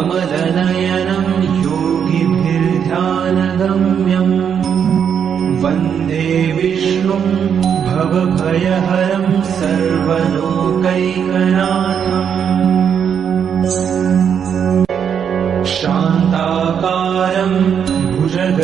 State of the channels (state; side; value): quieter; left; 7.8 dB